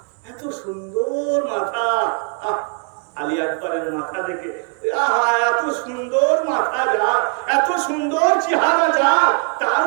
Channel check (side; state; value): left; quieter; 39.9 dB